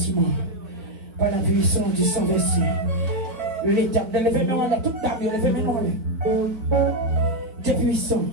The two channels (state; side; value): late; left; 3.8 ms